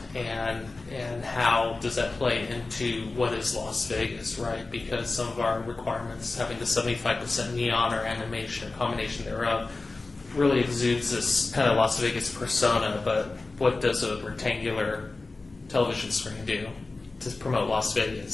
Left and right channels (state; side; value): quieter; right; 3.5 dB